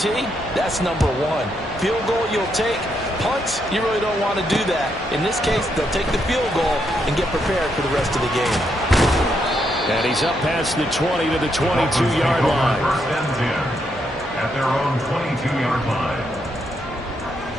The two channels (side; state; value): both; normal; correlation 0.78